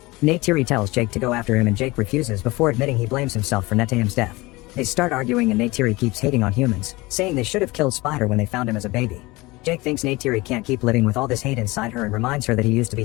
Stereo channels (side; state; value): right; quieter; 22.1 dB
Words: Neytiri tells Jake to go after him and Jake refuses before admitting he blames himself for Netayam's death. They start arguing and Neytiri keeps hating on humans, saying they should have killed Spider when they found him as a baby. Jake thinks Neytiri can't keep living with all this hate inside her and reminds her that he used to be